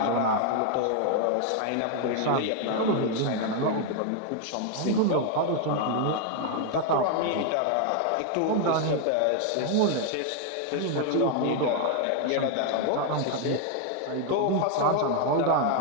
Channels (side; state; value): both; different; correlation 0.00